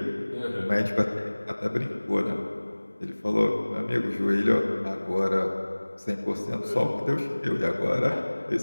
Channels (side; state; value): both; inverted; correlation -1.00